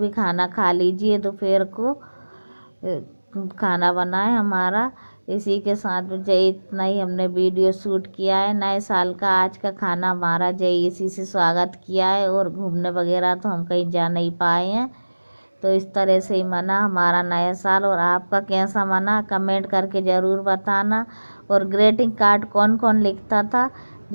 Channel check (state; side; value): inverted; both; correlation -1.00